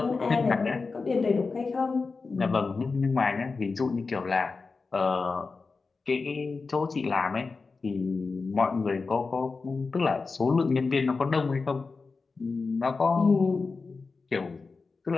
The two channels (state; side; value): quieter; right; 4.3 dB